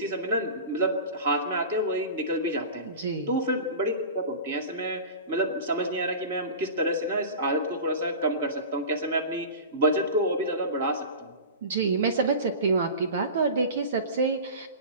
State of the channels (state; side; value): inverted; both; correlation -0.33